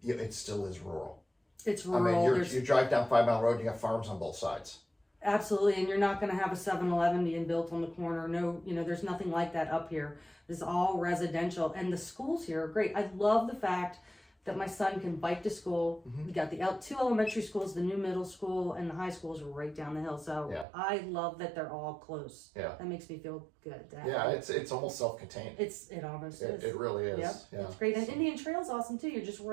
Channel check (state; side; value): drops out; left; at 20.7 s